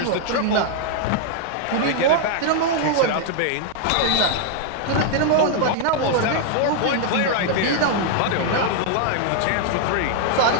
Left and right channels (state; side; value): different; both; correlation 0.00